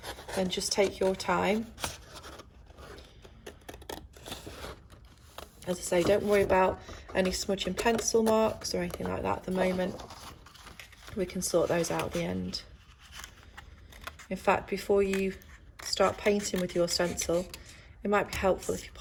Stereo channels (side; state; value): both; identical; correlation 1.00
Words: then just take your time. As I say, don't worry about any smudging pencil marks or anything like that at the moment. We can sort those out at the end. In fact, before you start painting with your stencil, it might be helpful if you